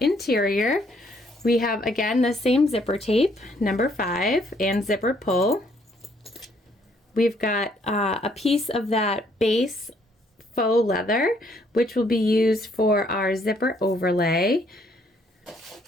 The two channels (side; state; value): both; normal; correlation 0.67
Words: We have, again, the same zipper tape, number 5, and zipper pull. We've got a piece of that base faux leather, which will be used for our zipper overlay.